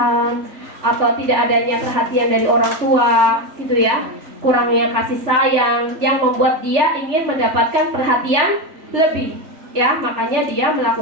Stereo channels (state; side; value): late; left; 3.3 ms